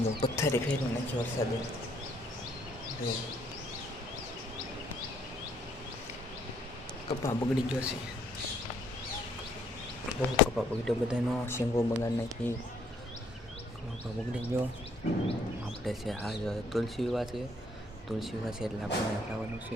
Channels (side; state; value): both; normal; correlation 0.65